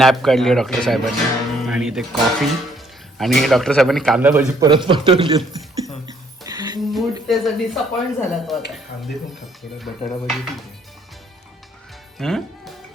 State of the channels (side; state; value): both; normal; correlation 0.66